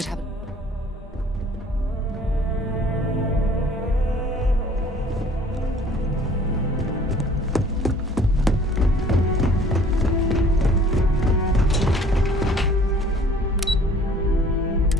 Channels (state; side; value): normal; both; correlation 0.53